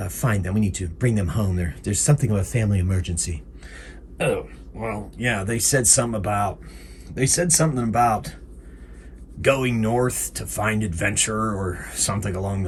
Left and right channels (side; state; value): both; identical; correlation 1.00